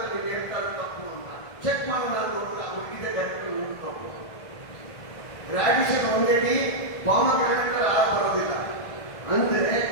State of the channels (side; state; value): right; late; 1.6 ms